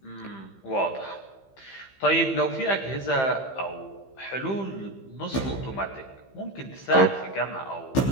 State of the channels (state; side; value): late; right; 15 ms